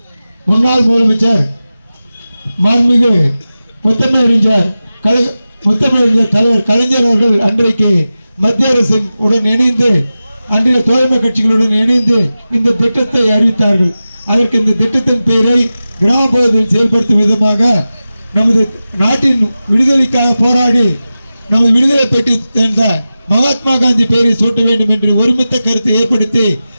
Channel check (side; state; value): both; inverted; correlation -0.94